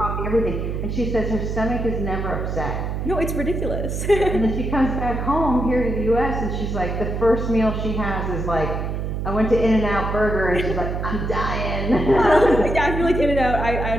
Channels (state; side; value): noise; right; hum, 3 dB below the sound